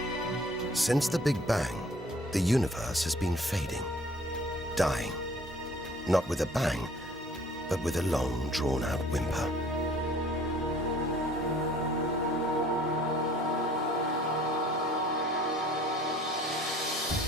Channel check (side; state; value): both; normal; correlation 0.53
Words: Since the Big Bang, the universe has been fading, dying, not with a bang, but with a long, drawn-out whimper.